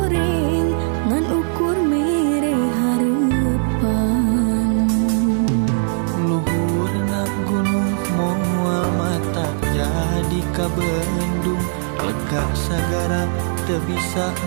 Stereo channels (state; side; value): silent; left; 61 dB below the other